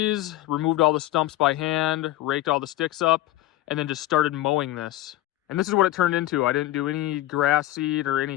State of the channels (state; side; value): quieter; right; 15.7 dB